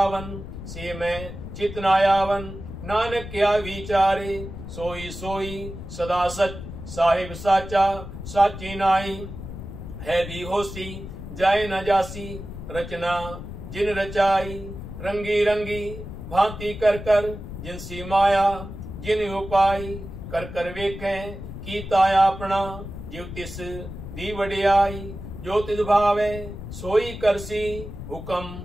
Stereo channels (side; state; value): left; noise; rumble, 10 dB below the sound